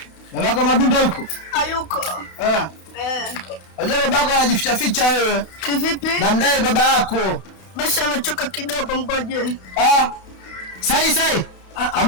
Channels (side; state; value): right; late; 32 ms